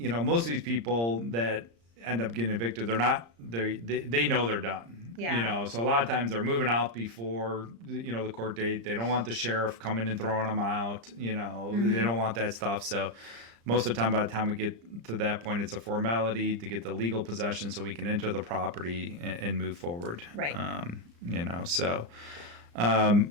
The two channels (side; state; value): left; late; 35 ms